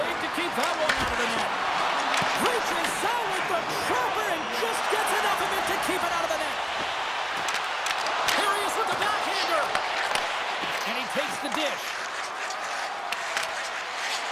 to keep that one out of the net. Reaches out with the trapper and just gets enough of it to keep it out of the net. Here he is with the backhander. And he takes the dish.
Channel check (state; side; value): identical; both; correlation 1.00